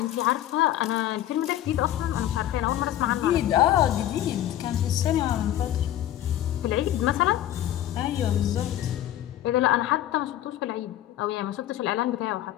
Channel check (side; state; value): right; quieter; 12.6 dB